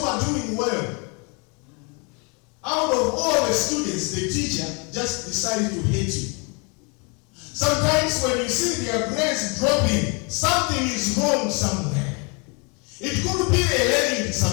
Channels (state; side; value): quieter; right; 32.8 dB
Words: are doing well. Out of all the students, the teacher just decided to hate you. Sometimes when you see their grades dropping, something is wrong somewhere. It could be a learning